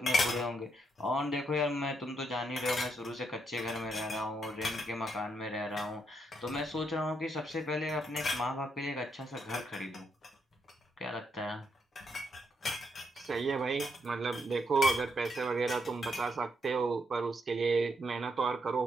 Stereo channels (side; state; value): both; normal; correlation 0.78